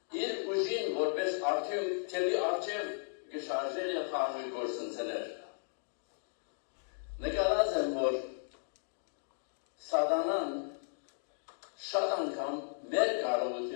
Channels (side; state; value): right; silent; digital silence